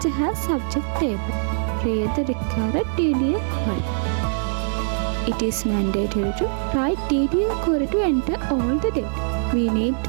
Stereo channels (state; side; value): silent; left; 64 dB below the other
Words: has subject table. Create the required DDL query. It is mandatory to write DDL query to enter all the data. We need